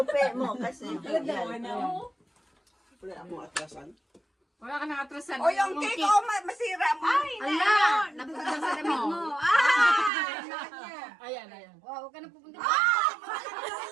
mo kasi. Wala akong atrasan. Wala ka nakatrasan. O yung cake, masira mo. Ay, Ala! Napagdang sa damit mo. Ayan. Wow, huwag ka na pupunta.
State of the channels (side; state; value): left; drops out; at 10.1 s